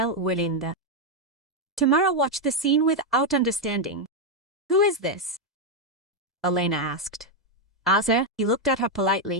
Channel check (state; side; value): normal; both; correlation 0.03